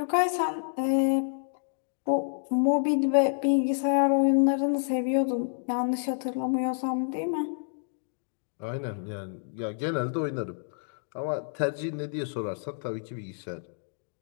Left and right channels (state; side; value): silent; right; digital silence